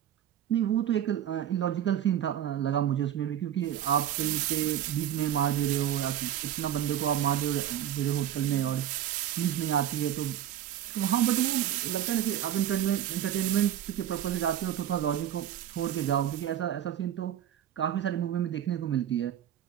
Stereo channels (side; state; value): left; quieter; 10.7 dB